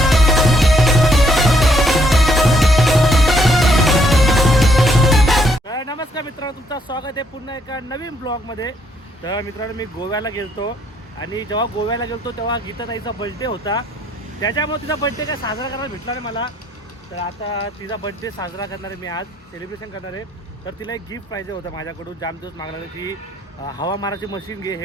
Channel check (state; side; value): normal; both; correlation 0.70